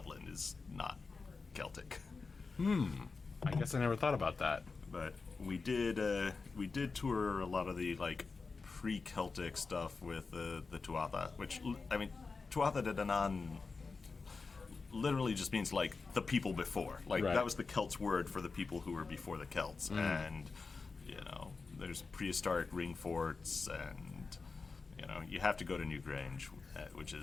is not Celtic. I guess I never thought about that. But we did tour a lot of the like pre-Celtic stuff with the Tuatha, which, I mean, Tuatha De Danann literally just means like the people before. Like, that was the Celts word for the people who were before the Celts. And there's prehistoric ring forts, and you have to go to Newgrange, which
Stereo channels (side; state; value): right; quieter; 4.4 dB